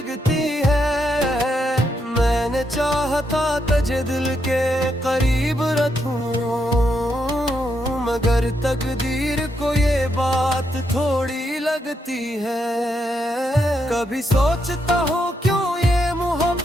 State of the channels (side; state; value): both; normal; correlation 0.80